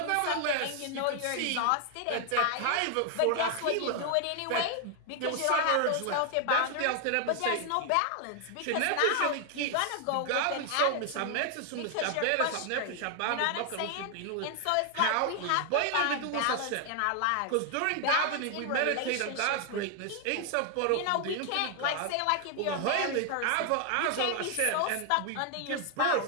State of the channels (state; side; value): different; both; correlation 0.00